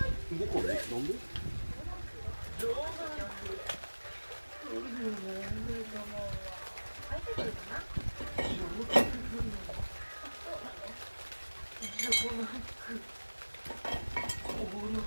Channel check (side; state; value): both; inverted; correlation -1.00